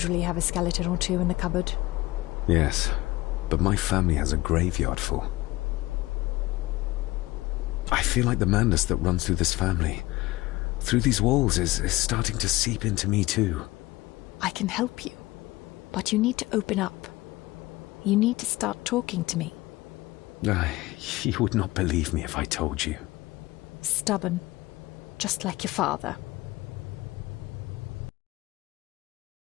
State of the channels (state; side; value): quieter; right; 19.5 dB